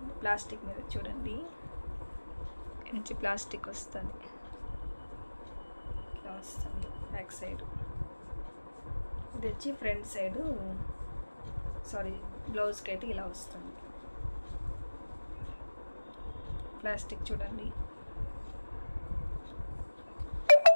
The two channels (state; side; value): inverted; both; correlation -1.00